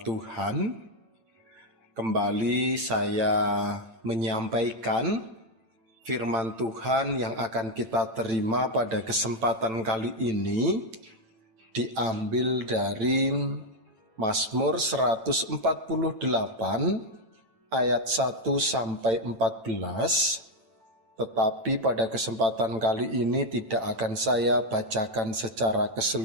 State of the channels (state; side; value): late; left; 8.9 ms